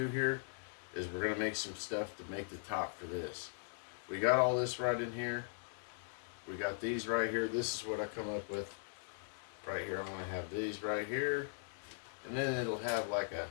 here is we're going to make some stuff to make the top for this. We got all this right in here. We got these right here. This is what I come up with right here. I'm going to have these right here. And then it'll have like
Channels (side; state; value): right; silent; digital silence